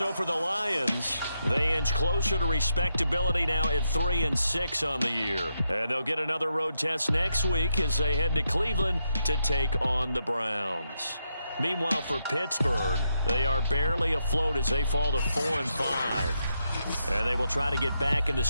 for the Lions, they inch closer to respectability now at 3-6 on the year. And they'll get another road test next week as they head to Cleveland to take on the Browns. Meanwhile, for Pittsburgh, they are barely afloat as they fall to 4-5. And they will try to get back in the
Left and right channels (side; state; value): both; inverted; correlation -0.82